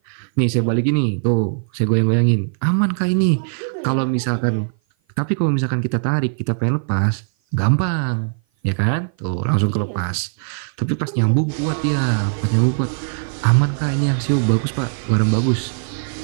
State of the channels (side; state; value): left; silent; 56 dB below the other